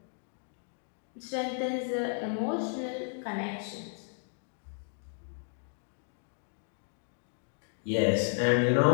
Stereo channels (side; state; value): right; silent; 56 dB below the other